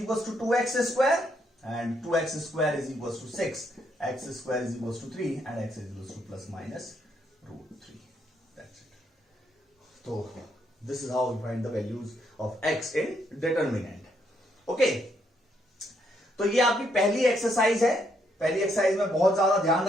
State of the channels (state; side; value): normal; both; correlation 0.74